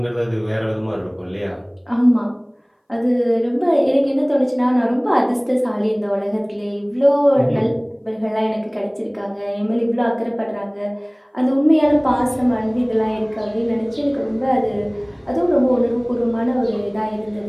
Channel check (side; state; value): both; identical; correlation 1.00